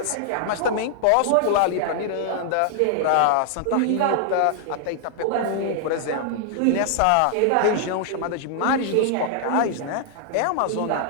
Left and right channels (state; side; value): different; both; correlation 0.00